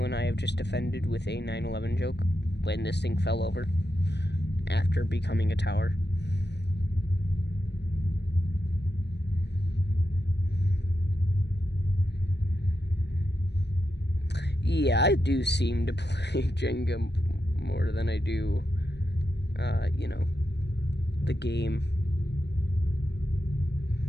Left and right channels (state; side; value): late; right; 0.50 ms